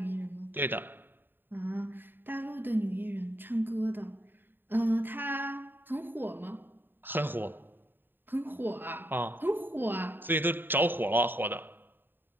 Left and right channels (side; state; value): left; late; 0.095 ms